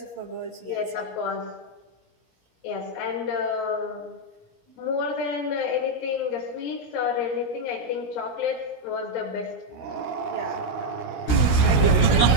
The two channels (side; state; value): right; late; 16 ms